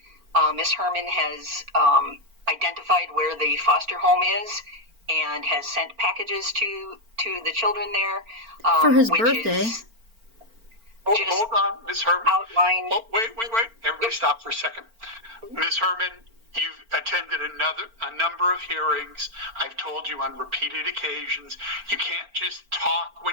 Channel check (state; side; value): late; left; 4.4 ms